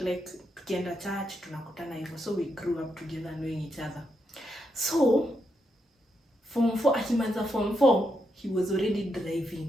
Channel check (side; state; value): both; normal; correlation 0.82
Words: like tukienda church tunakutana hivyo. So we grew up together knowing each other. So form 4, akimaliza form 4, he was already